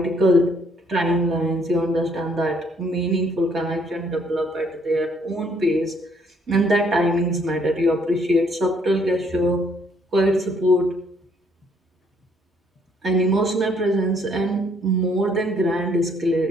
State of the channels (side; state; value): both; normal; correlation 0.66